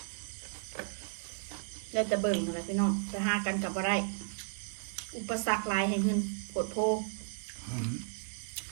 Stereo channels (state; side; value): silent; left; digital silence